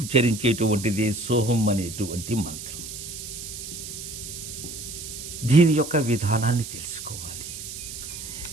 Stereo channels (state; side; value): noise; right; hiss, 9 dB below the sound